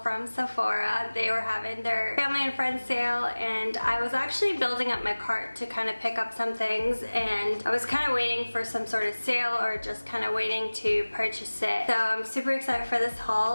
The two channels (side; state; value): both; inverted; correlation -1.00